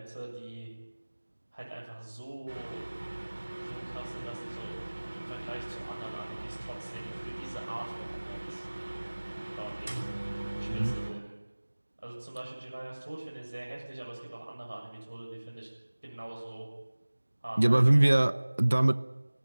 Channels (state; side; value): inverted; both; correlation -1.00